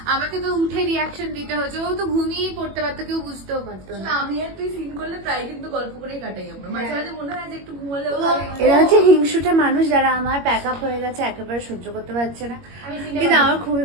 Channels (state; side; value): late; left; 21 ms